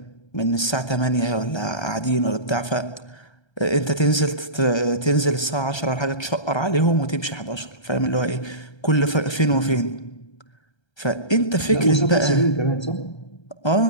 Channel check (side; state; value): right; late; 1.3 ms